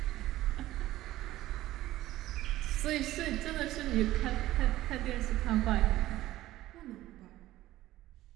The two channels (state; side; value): quieter; left; 15.5 dB